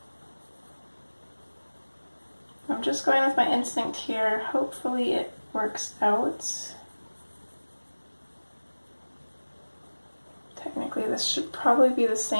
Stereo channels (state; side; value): inverted; both; correlation -1.00